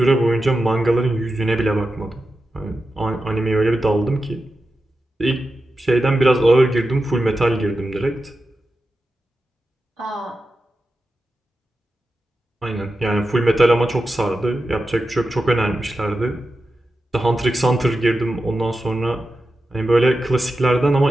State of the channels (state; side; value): normal; both; correlation 0.91